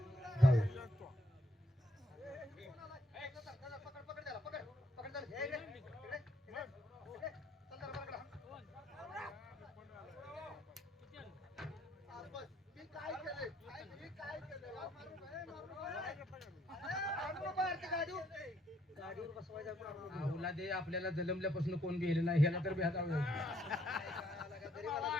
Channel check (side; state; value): both; normal; correlation 0.70